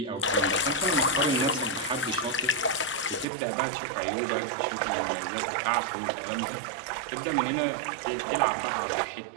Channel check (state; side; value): drops out; left; at 3.2 s